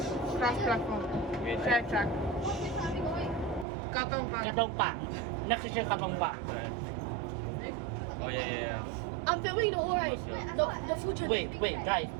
cross platform. Wait. Track. Katong Park. Katong Park. Next station, Katong Park. Oh yeah. I'm filming the whole ride. The future. Wait, guys.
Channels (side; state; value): left; drops out; at 3.7 s